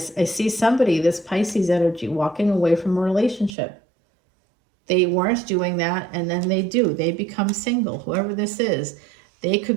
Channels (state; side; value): drops out; left; at 3.6 s